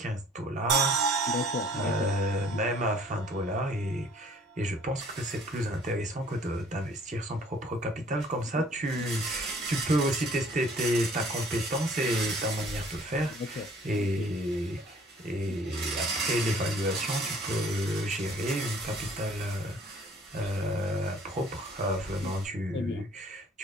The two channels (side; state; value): both; normal; correlation 0.55